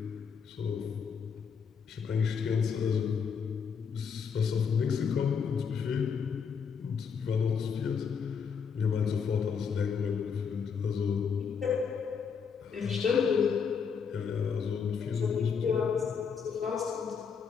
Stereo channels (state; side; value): quieter; right; 6.4 dB